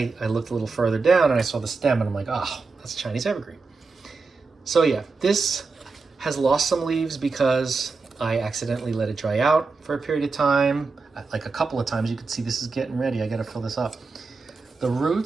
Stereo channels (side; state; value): left; quieter; 4.2 dB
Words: looked a little further down and I saw the stem, and I'm like, "Oh, that's a Chinese evergreen." So yeah, this has lost some leaves because I accidentally let it dry out for a period of time, like a couple of times. You can see this is getting ready. I got to fill this up. The